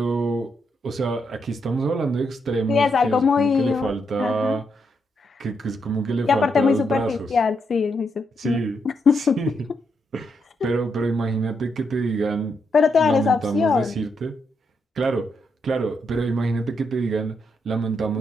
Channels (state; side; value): normal; both; correlation 0.80